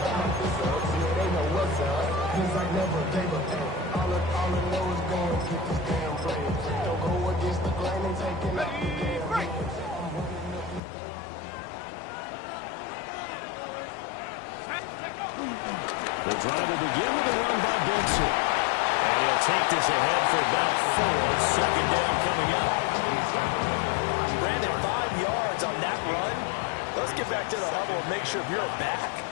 The drive will begin with a run by Benson. And he'll take this ahead for about 4. Second down coming up. Brandon, 5 yards on that run. Let's get back to the huddle and make sure if you're back,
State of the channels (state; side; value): drops out; right; at 10.8 s